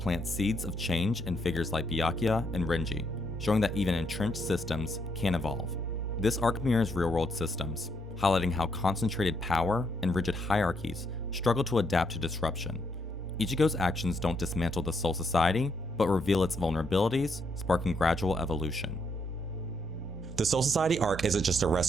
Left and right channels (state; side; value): normal; both; correlation 0.75